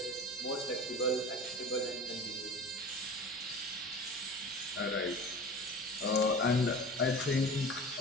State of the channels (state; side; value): normal; both; correlation 0.37